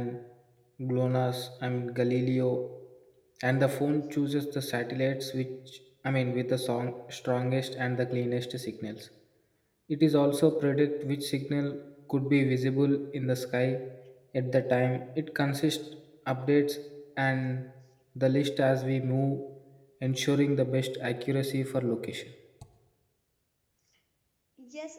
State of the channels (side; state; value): both; identical; correlation 1.00